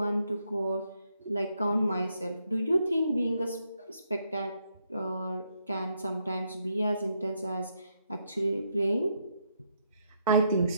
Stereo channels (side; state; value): both; inverted; correlation -0.77